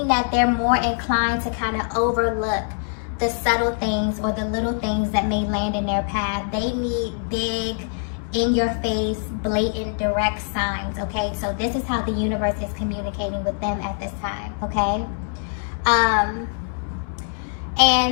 that they're more inclined to kind of overlook the subtle things or the little things that may land in their path. They need big, in your face, blatant, direct signs, okay? So this is how the universe is communicating with them at this time, okay?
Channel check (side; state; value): right; silent; 63 dB below the other